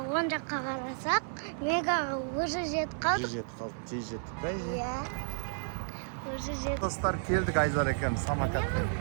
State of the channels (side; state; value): left; silent; 56 dB below the other